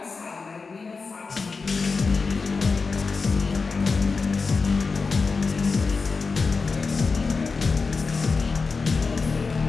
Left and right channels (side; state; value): right; quieter; 4.5 dB